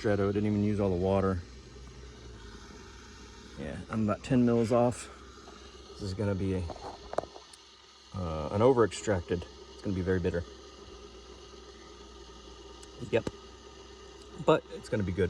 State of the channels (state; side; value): identical; both; correlation 1.00